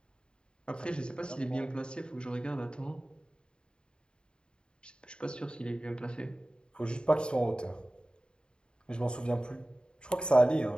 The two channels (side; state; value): right; late; 0.051 ms